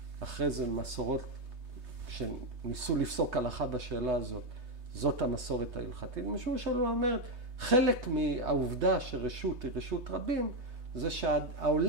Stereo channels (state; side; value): late; left; 3.2 ms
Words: אחרי זה מסורות שניסו לפסוק הלכה בשאלה הזאת, זאת המסורת ההלכתית. משום שלו אומרת, חלק מהעובדה שרשות היא רשות רבים, זה